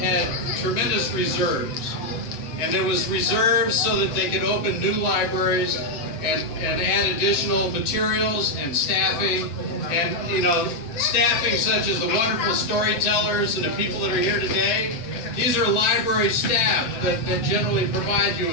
tremendous reserves. And there was reserves so that they could open new libraries and add additional materials and staffing. And, you know, staffing such as the wonderful storytellers and the people that are here today. These are library staff that generally provide you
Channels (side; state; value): right; late; 7.8 ms